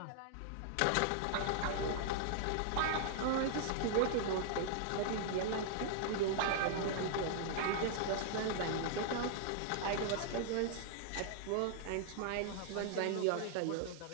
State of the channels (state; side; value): different; both; correlation -0.01